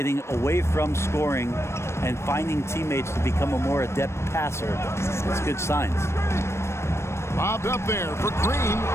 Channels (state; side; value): late; right; 0.13 ms